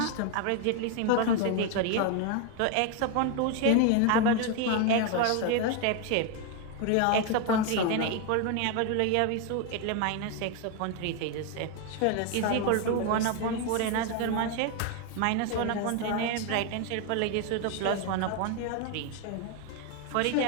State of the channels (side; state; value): both; different; correlation 0.01